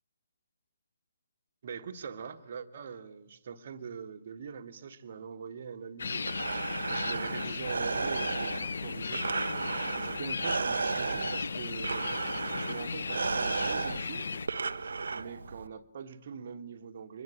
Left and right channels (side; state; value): both; inverted; correlation -0.87